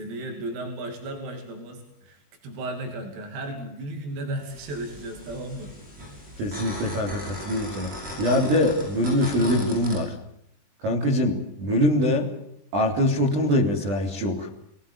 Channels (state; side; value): late; left; 20 ms